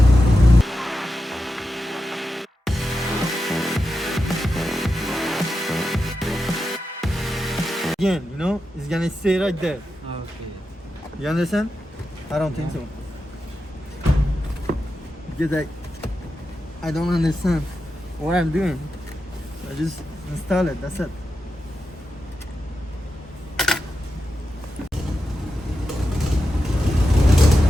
Again, you know, it's gonna stay right there. Okay. You understand? I don't think so. Because I don't understand what I'm doing. I just install it, that's it.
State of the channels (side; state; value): both; normal; correlation 0.89